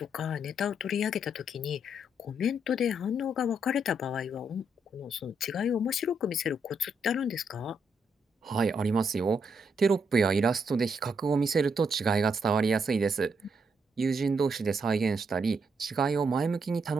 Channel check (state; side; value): normal; both; correlation 0.77